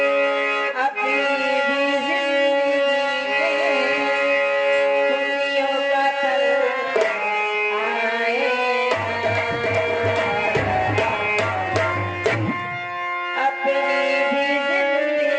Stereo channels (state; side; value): identical; both; correlation 1.00